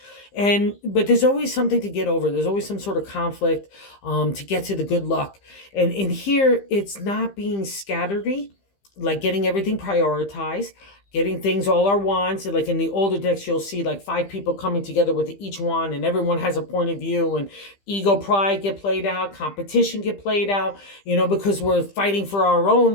But there's always something to get over. There's always some sort of conflict to get to the good luck. And in here, it's not being scatteredy, like getting everything prioritized, getting things, all our wands. Like in the older decks, you'll see like 5 people coming together with each wand, and everyone has a point of view, and ego, pride get played out, competition get played out, because we're fighting for our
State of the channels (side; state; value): right; late; 15 ms